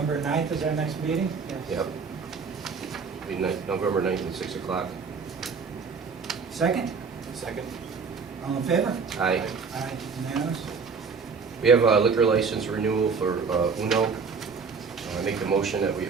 9th is our next meeting? Yep. Be November 9th at 6 o'clock. Second? Second. All in favor? Aye. Aye, unanimous. We have a liquor license renewal for Uno. I make the motion that we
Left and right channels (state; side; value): quieter; left; 5.4 dB